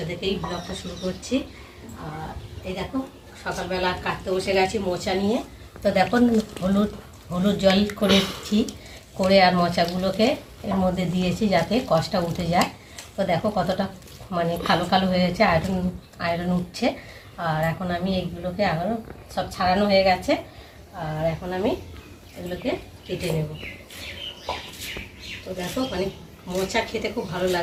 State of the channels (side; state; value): both; identical; correlation 1.00